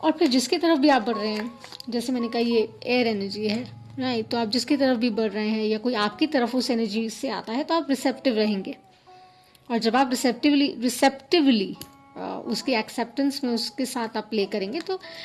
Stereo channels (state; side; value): identical; both; correlation 1.00